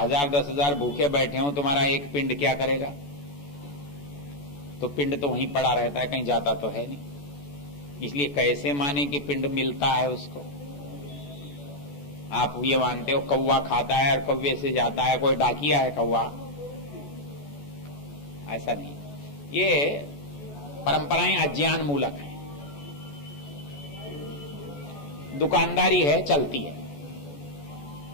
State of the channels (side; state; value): right; late; 14 ms